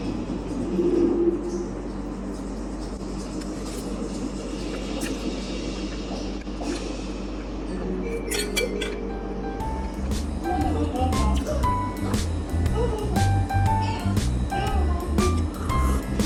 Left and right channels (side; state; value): both; identical; correlation 1.00